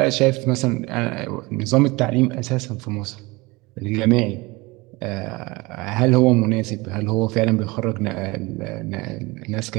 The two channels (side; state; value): left; quieter; 23.6 dB